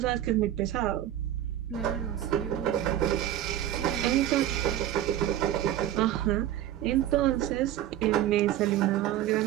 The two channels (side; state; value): left; quieter; 12.2 dB